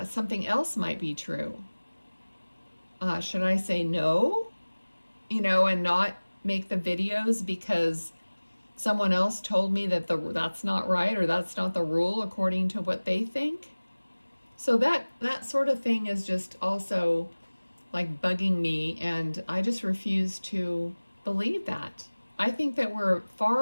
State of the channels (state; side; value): inverted; both; correlation -1.00